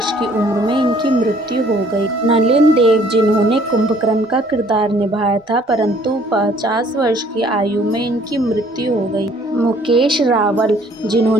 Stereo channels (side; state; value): both; normal; correlation 0.59